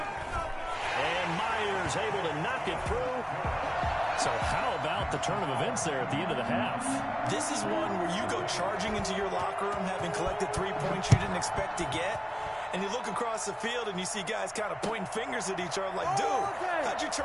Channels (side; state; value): both; identical; correlation 1.00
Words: And Myers able to knock it through. So how about the turn of events there at the end of the half? This is one where you go charging into your locker room having collected 3 points you didn't expect to get. And you look across the field and you see guys kind of pointing fingers at each other like, dude, how'd you